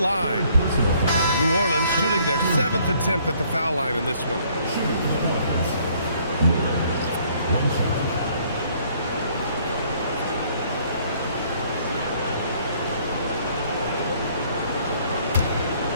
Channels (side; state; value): both; inverted; correlation -0.62